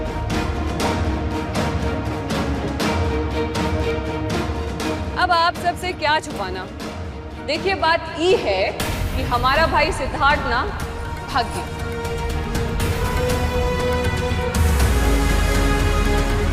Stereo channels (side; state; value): both; identical; correlation 1.00